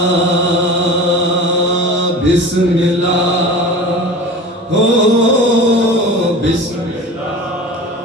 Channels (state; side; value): normal; both; correlation 0.35